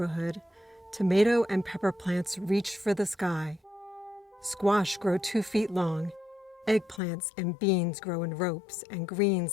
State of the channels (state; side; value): drops out; right; at 7.0 s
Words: tomato and pepper plants reach for the sky. Squash grow 2 feet long. Eggplants and beans grow in ropes, and greens